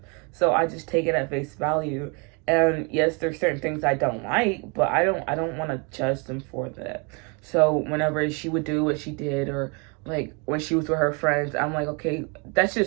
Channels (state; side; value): quieter; left; 33.1 dB